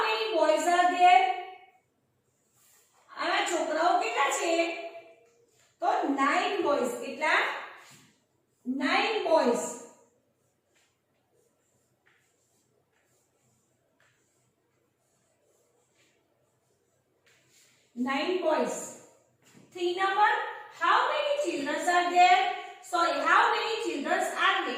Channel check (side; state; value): both; identical; correlation 1.00